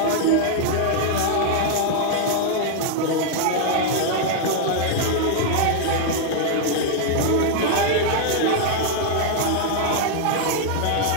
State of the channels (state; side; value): different; both; correlation 0.00